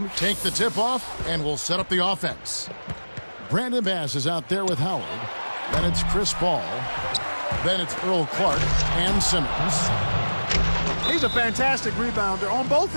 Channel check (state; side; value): inverted; both; correlation -1.00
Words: take the tip-off and will set up the offense. Brandon Bass is out there with Howard. Then it's Chris Paul. Then it's Earl Clark and Simmons. He's a fantastic rebounder on both